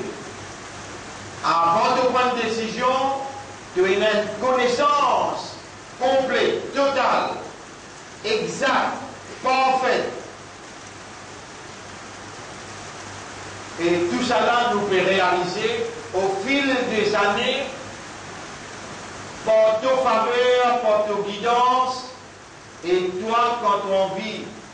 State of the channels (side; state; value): both; identical; correlation 1.00